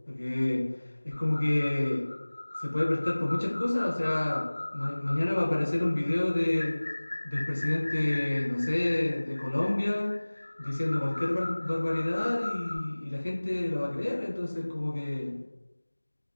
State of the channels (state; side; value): inverted; both; correlation -1.00